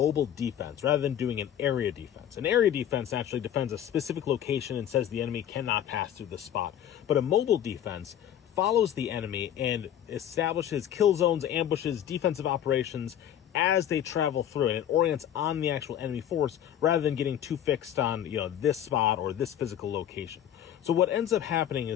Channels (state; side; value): quieter; right; 10.4 dB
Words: defense rather than doing an area defense. An area defense actually defends a specific location and says the enemy cannot pass through the spot. But a mobile defense follows the enemy and establishes kill zones, ambushes, defensive operations as they travel through, and it orients on the actual enemy force rather than getting too fixed on, this spot or this physical location. So what ends up happening